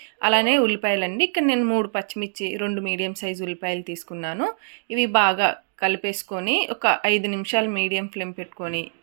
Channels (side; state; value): left; silent; digital silence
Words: అలానే ఉల్లిపాయలండి. ఇక్కడ నేను 3 పచ్చిమిర్చి 2 మీడియం సైజు ఉల్లిపాయలు తీసుకున్నాను. ఇవి బాగా కలిపేసుకొని ఒక 5 నిమిషాలు మీడియం ఫ్లేమ్ పెట్టుకొని